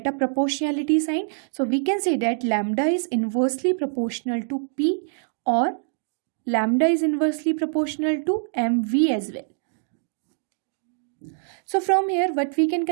a proportionality sign. So we can say that lambda is inversely proportional to p, or lambda is inversely proportional to mv as well. So from here, what we can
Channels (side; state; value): left; silent; digital silence